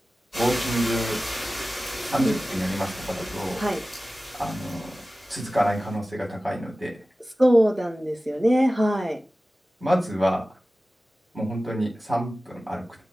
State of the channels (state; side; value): normal; both; correlation 0.96